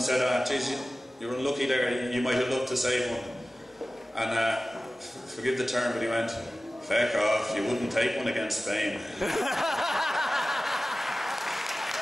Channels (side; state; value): both; normal; correlation 0.96